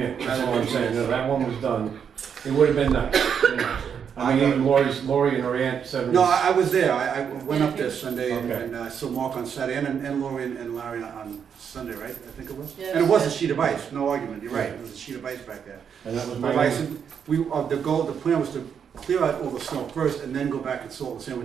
That's all I'm saying. No, that one was done. It would have been nice. You know. I mean, even Lori and her aunt said. No, I was there. I went up there Sunday Okay. and I saw Mark on Saturday and Lori and Larry on Sunday, right? I think it was. Yes. And it was a sheet of ice. No argument. You're right. It was a sheet of ice back there. And that was But my. I said, the plan was to clear out all the snow first and then go back and salt the sand,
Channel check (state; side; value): quieter; left; 7.5 dB